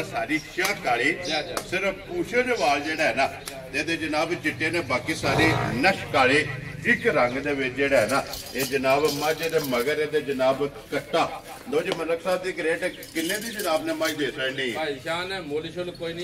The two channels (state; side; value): identical; both; correlation 1.00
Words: ਸਾਰੀ ਸ਼ਾਹ ਕਾਲੀ ਸਿਰਫ ਪੂਛੇ ਦੇ ਵਾਲ ਜਿਹੜਾ ਹੈ ਨਾ ਇਹਦੇ ਜਨਾਬ ਚਿੱਟੇ ਨੇ ਬਾਕੀ ਸਾਰੇ ਨਸ਼ ਕਾਲੇ ਇੱਕ ਰੰਗ ਦੇ ਵਿੱਚ ਜਿਹੜਾ ਹੈ ਨਾ ਇਹ ਜਨਾਬ ਮੱਝ ਦੇ ਮਗਰ ਇਹਦੇ ਜਨਾਬ ਕੱਟਾ ਲੋ ਜੀ ਮਲਕ ਸਾਹਿਬ ਦੀ ਗ੍ਰੇਟ ਕਿੰਨੇ ਦੀ ਜਨਾਬ ਨੇ ਮੱਝ ਦੇ ਸਕਣੀ ਭਾਈ ਸ਼ਾਨ ਮੁੱਲ ਸ਼ੁੱਲ ਕੋਈ